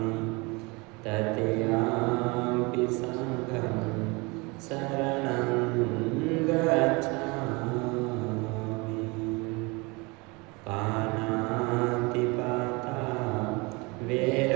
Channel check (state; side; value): quieter; left; 26.8 dB